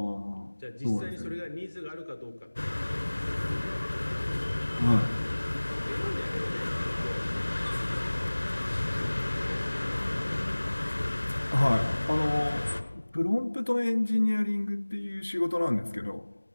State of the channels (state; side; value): inverted; both; correlation -1.00